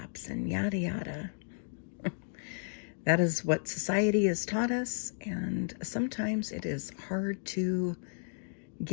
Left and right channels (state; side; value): silent; right; digital silence